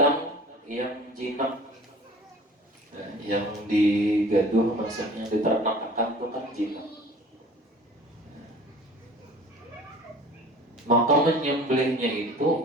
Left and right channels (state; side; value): normal; both; correlation 0.45